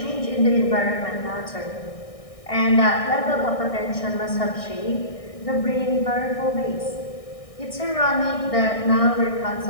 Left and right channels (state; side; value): late; right; 1.6 ms